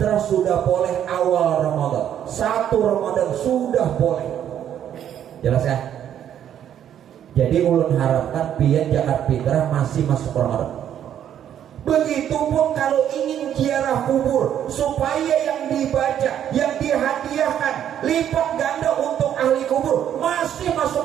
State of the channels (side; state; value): left; quieter; 10.0 dB